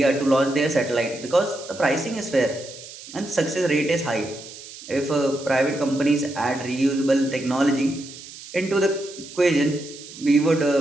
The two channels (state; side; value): noise; right; hiss, 15 dB below the sound